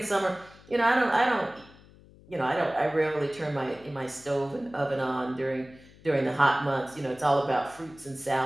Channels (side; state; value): left; noise; hum, 24 dB below the sound